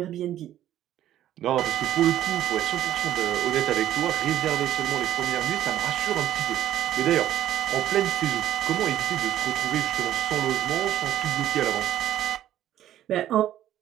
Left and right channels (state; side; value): quieter; left; 12.3 dB